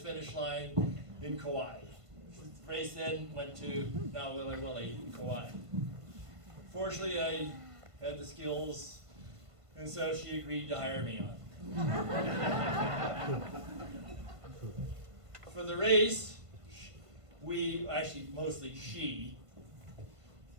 line in Kauai. The race then went to now Willy Willy in Kauai. Fortunately, I had the skills, and so she agreed to hire me on. For the race, mostly she,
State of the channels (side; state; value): left; late; 1.5 ms